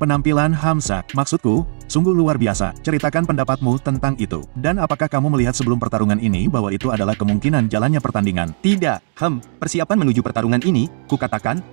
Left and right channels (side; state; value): left; silent; digital silence